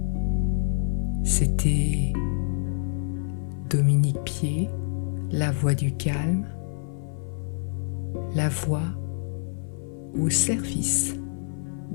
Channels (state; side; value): silent; right; 55 dB below the other